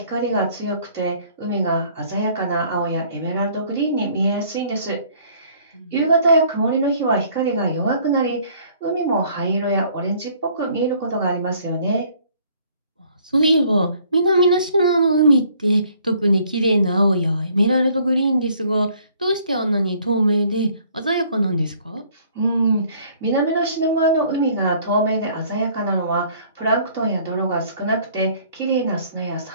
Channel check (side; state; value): both; inverted; correlation -0.59